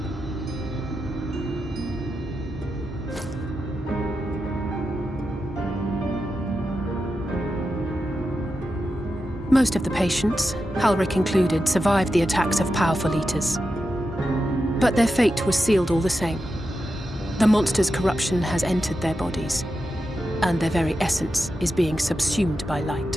Most of the patients, Halric included, survived the attacks of powerful eaters. But their fate was sealed all the same. The monster's corruption has entered their bodies, and their very essence is being subsumed by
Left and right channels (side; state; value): both; normal; correlation 0.89